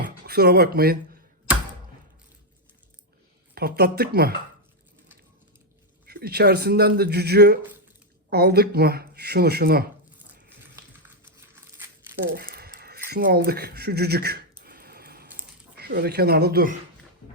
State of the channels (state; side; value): normal; both; correlation 0.01